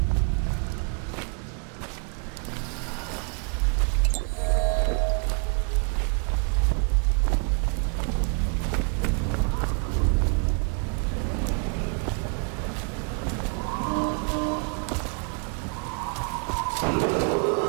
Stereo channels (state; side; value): quieter; left; 37.1 dB